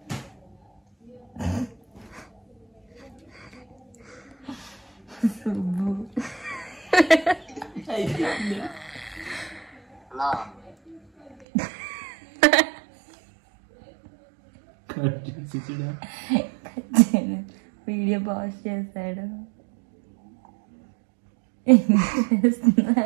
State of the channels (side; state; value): left; drops out; at 11.5 s